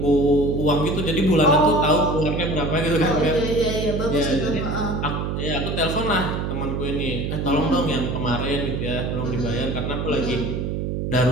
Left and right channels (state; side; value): noise; right; hum, 2 dB below the sound